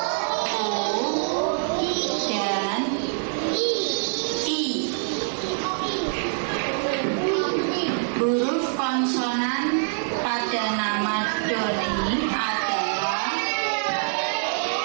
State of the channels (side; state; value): left; silent; 62 dB below the other